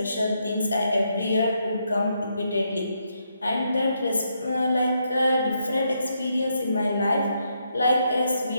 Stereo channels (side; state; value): both; inverted; correlation -0.78